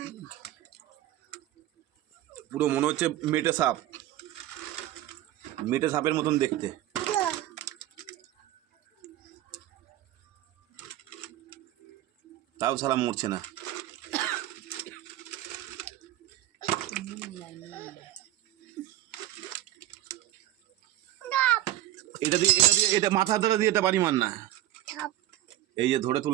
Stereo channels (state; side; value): quieter; left; 13.9 dB